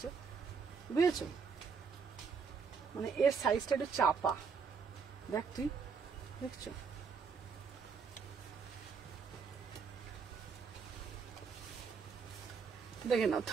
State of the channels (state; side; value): quieter; left; 5.6 dB